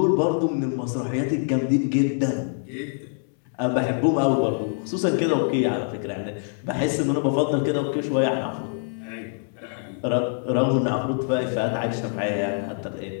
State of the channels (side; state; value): right; silent; 62 dB below the other